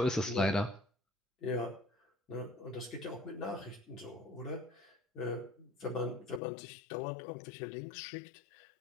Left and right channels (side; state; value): right; drops out; at 6.4 s